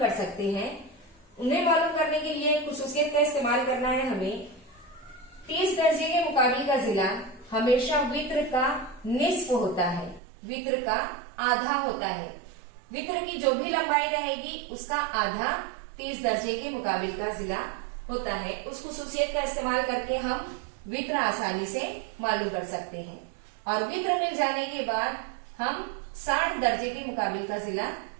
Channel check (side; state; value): left; drops out; at 10.2 s